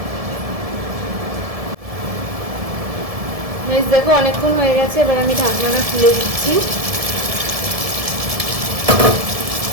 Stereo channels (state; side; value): late; left; 1.7 ms